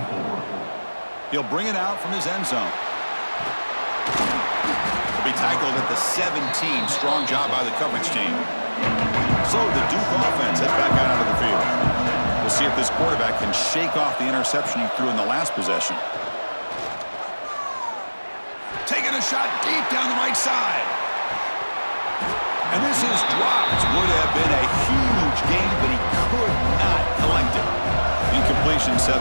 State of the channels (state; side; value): inverted; both; correlation -1.00